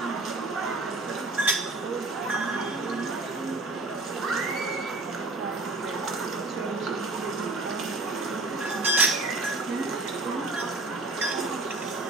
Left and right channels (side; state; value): left; quieter; 3.1 dB